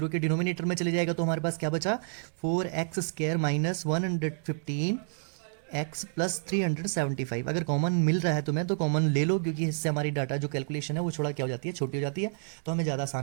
के डिनोमिनेटर में चले जाएगा, तो हमारे पास क्या बचा 4x square minus 115 x plus 375। अगर कॉमन मिल रहा है तुम्हें तो कॉमन ले लो, क्योंकि इससे हमारी डाटा जो कैलकुलेशन है वो थोड़ा क्या हो जाती है, छोटी हो जाती है, तो हमें ज़्यादा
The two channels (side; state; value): left; silent; digital silence